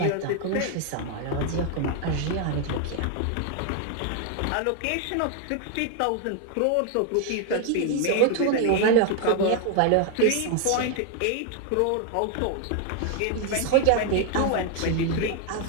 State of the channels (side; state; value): both; different; correlation 0.00